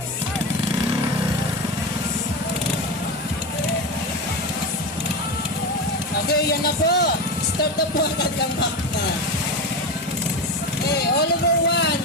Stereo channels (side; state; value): both; normal; correlation 0.20